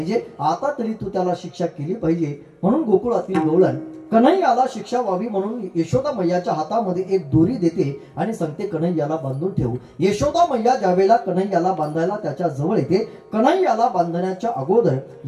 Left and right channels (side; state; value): both; identical; correlation 1.00